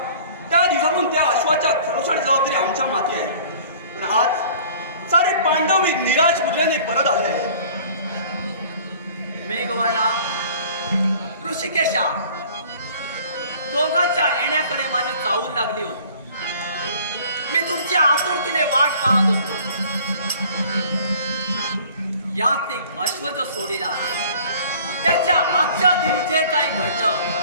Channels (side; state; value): both; inverted; correlation -0.50